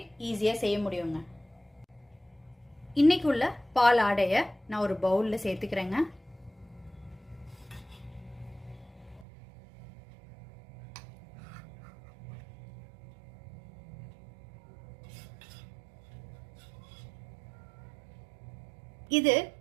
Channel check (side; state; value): left; drops out; at 9.2 s